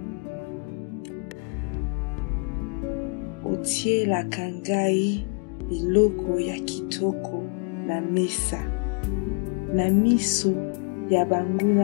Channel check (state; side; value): quieter; right; 35.8 dB